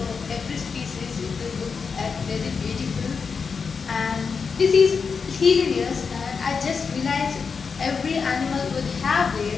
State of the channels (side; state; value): right; quieter; 5.5 dB